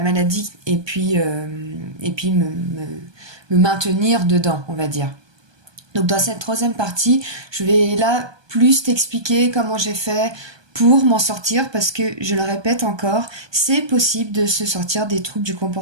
et puis me maintenir dedans, on va dire. Donc dans cette troisième partie, je vais là plus t'expliquer comment j'ai fait pour m'en sortir, parce que, je le répète encore, c'est possible de se sortir des troubles du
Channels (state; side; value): late; left; 1.2 ms